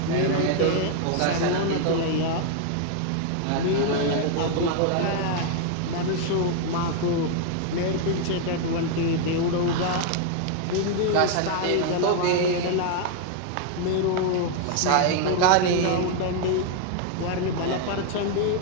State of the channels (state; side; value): different; both; correlation 0.00